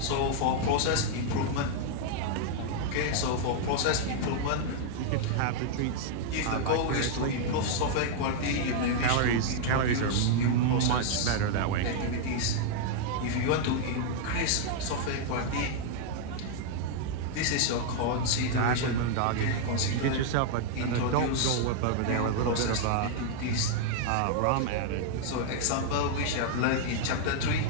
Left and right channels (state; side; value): different; both; correlation -0.01